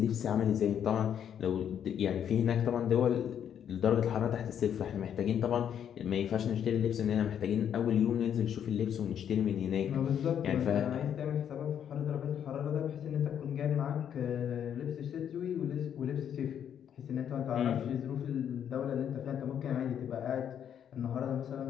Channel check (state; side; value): quieter; right; 9.0 dB